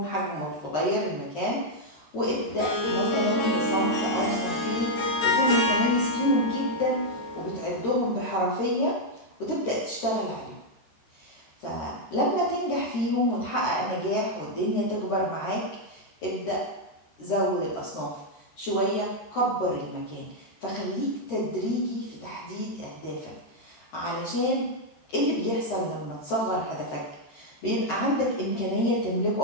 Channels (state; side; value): late; right; 13 ms